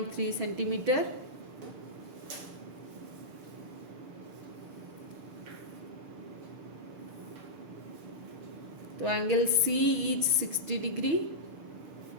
centimeter. So angle C is 60 degree,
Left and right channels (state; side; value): late; left; 6.7 ms